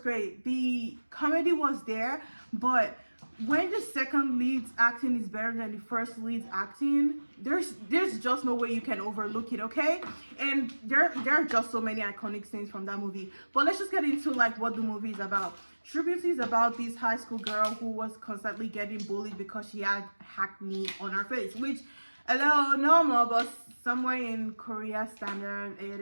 great, the comedy was there, but when the second lead's acting is better than the first lead's acting, there's just no way you can overlook it, okay? And there are just so many iconic scenes from that movie. But let's just get into like what the movie is about. True Beauty is about this high school girl who was constantly getting bullied because she had acne on her face, which, hello, normal, but somewhere in Korea standard, it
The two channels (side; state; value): both; inverted; correlation -1.00